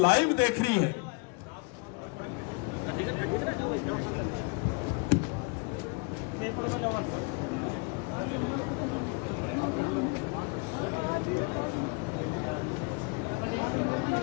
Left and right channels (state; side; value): quieter; right; 32.3 dB